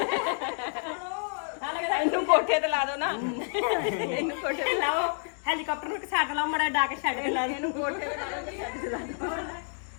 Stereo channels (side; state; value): right; silent; 59 dB below the other